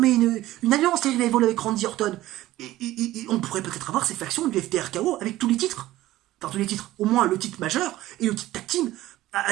une alliance, les Revival, avec Randy Orton. Et on pourrait peut-être avoir ces factions du FTRKO avec tous les titres. Enfin, tous les titres. Au moins le titre majeur et le titre tag team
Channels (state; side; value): quieter; left; 15.8 dB